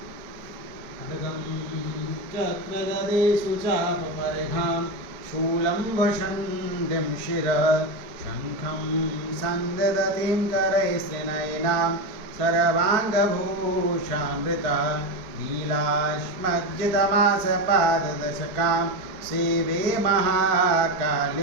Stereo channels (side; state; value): left; late; 4.6 ms